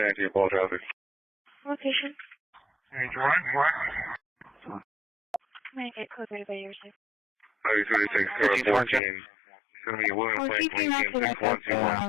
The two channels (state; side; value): drops out; right; at 9.0 s